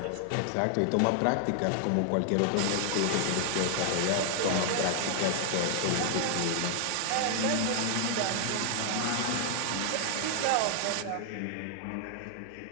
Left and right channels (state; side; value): different; both; correlation 0.00